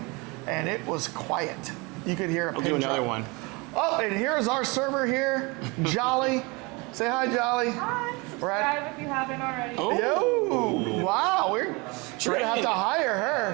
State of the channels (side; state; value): left; quieter; 27.0 dB